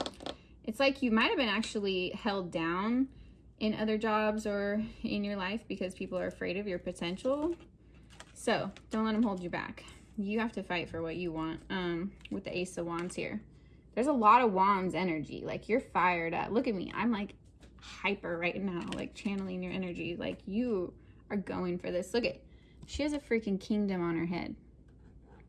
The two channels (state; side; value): identical; both; correlation 1.00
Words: it's like you might have been actually held down in other jobs or in your life because people are afraid of your potential. So don't let them hold you back. You have to fight for what you want. With the Ace of Wands here, there's a lot of Wands energy. Like, you're fired up. Look at me. I'm like hyper right now, like channeling your energy. Like, you are going for this. Look at, she has a freaking kingdom on her head.